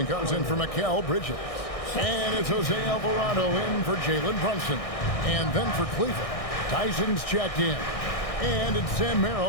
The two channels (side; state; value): right; late; 1.6 ms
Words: comes in for Mikal Bridges. And it's Jose Alvarado in for Jalen Brunson. And then for Cleveland, Tyson's checked in. And it's Sam